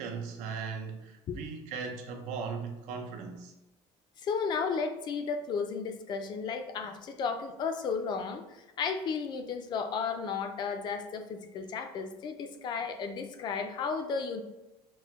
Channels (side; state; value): right; quieter; 3.8 dB